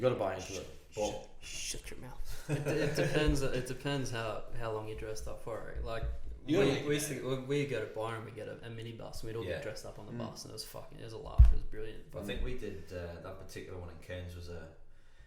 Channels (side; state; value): both; identical; correlation 1.00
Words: got to buy into it. But Shut your mouth. It depends. It depends how long you're dressed up for it. Like we go to Byron, we get a minibus, and we'd all get dressed up on the bus, and it was a laugh. It was brilliant. I think we did that particular one in Cairns was a